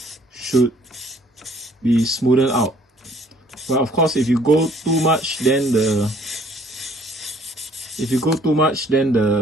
should be smoothed out. But of course, if you go too much, then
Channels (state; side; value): normal; both; correlation 0.59